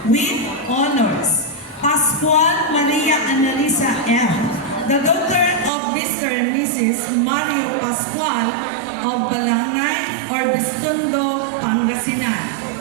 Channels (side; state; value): left; drops out; at 5.7 s